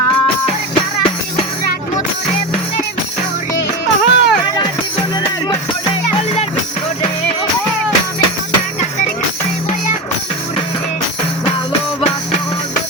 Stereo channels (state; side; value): normal; both; correlation 0.21